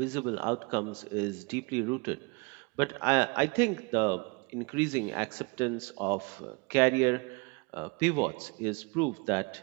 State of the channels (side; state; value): left; quieter; 29.3 dB